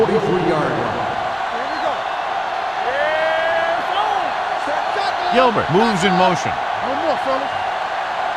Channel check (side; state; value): both; identical; correlation 1.00